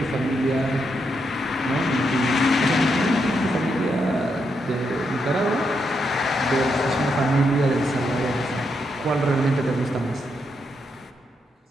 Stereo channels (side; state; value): both; normal; correlation 0.81